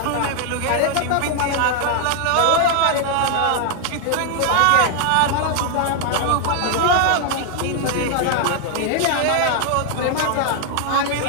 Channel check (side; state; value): both; different; correlation 0.00